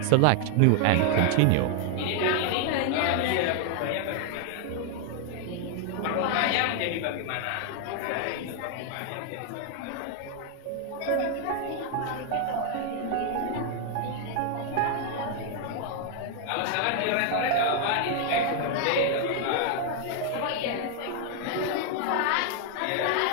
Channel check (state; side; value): different; both; correlation 0.00